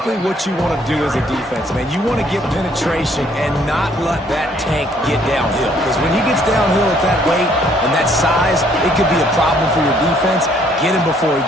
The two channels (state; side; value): normal; both; correlation 0.64